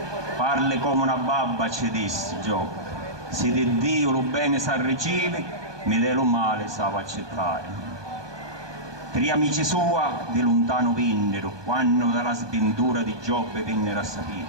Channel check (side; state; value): left; late; 1.2 ms